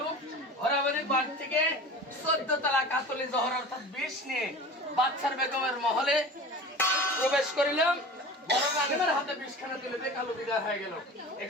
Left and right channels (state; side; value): normal; both; correlation 0.36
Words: হরাবাড়ির বাড়ি থেকে 14 তলা কাতলি জহর অর্থাৎ বিষ নিয়ে বাচ্চার বেগমের মহলে প্রবেশ করিলাম বড় গানের হাতে বিষখানা তুলে দিয়ে কালু বিদায় হয়ে গেল